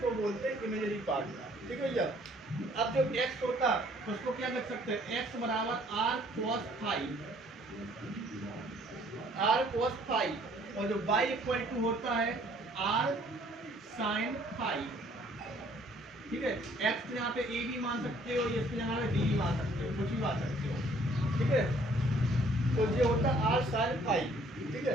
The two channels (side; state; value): both; normal; correlation 0.60